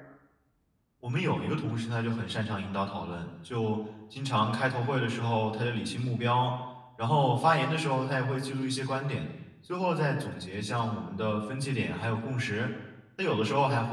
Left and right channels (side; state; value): both; identical; correlation 1.00